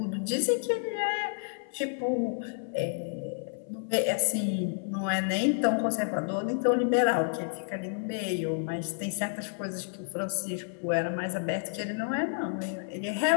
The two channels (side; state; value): right; silent; 58 dB below the other